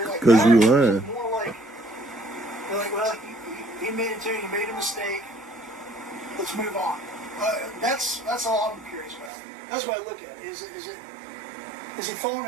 like, Cause you "No," or is lying. it more like, they're like, well, he made it too, he made a mistake, let's move on. That's all I'm curious about. That's what I look at. Is he falling on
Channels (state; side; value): drops out; left; at 9.3 s